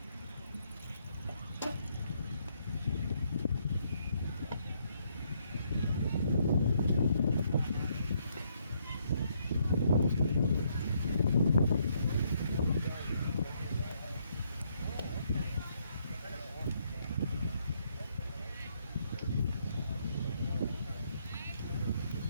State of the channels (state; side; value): inverted; both; correlation -0.72